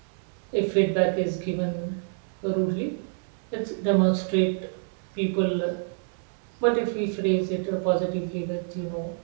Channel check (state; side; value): silent; left; 60 dB below the other